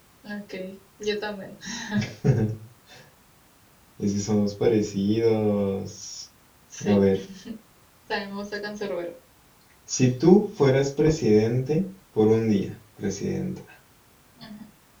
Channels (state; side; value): identical; both; correlation 1.00